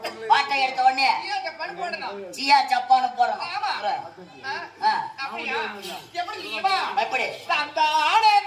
பாட்டை எடுத்த உடனே சியா சப்பாடு போடணும். சியா சப்பான்னு போடணும். ஆமா. அப்படியா? எப்படி நீவா? எப்படி? தந்தானே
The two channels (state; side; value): identical; both; correlation 1.00